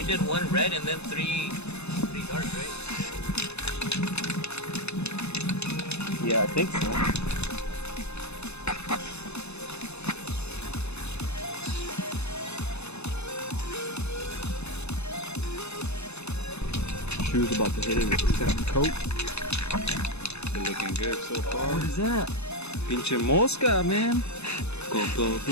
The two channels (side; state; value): right; late; 0.80 ms